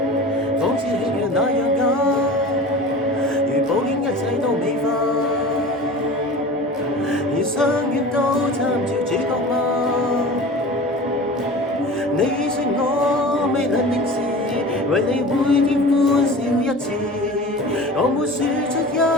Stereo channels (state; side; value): normal; both; correlation 0.37